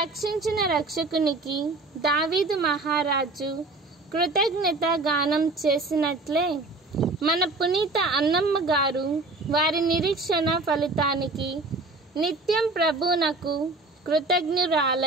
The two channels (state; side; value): quieter; left; 3.3 dB